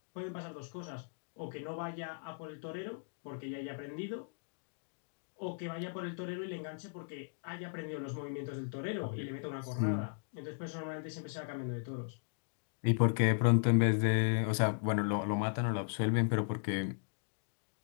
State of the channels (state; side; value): silent; right; digital silence